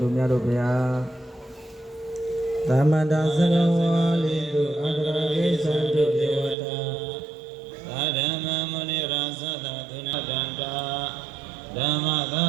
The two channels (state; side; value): drops out; left; at 6.6 s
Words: တို့များတို့ဘုရားသမန္တာသရဝါလိတုအန္တရာေသံတုဒေဝတာသာဓမ္မမုနိရာသသသုဏဒန္တာဓမ္မသာ